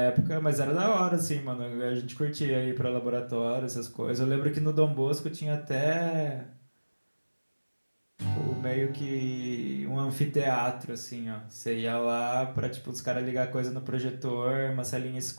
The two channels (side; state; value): both; inverted; correlation -1.00